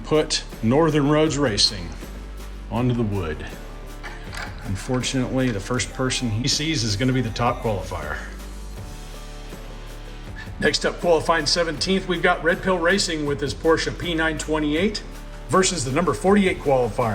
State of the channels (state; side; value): identical; both; correlation 1.00